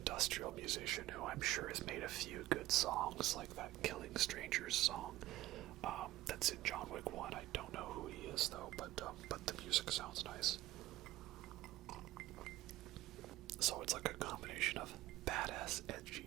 musician who I'm sure has made a few good songs, like that Killing Strangers song. That's in John Wick 1. I don't know who he is though, but the music sounds nice. So it's like a combination of badass,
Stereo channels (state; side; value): quieter; left; 16.2 dB